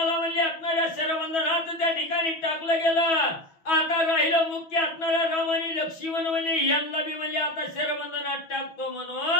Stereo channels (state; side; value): late; right; 6.2 ms